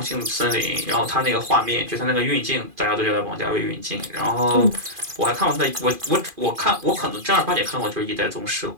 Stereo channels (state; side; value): late; left; 2.4 ms